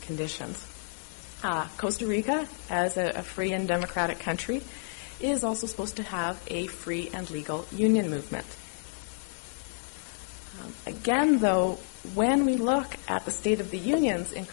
Costa Rica, as a free and democratic country, is also supposed to have a free and legal union movement. Again, though, when we look at the state of the unions in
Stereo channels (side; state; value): right; silent; digital silence